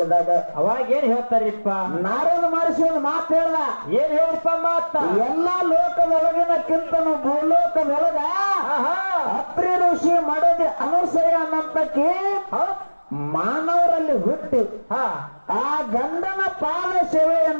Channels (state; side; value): inverted; both; correlation -1.00